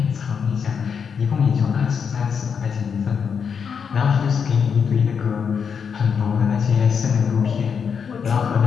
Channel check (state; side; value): quieter; right; 6.6 dB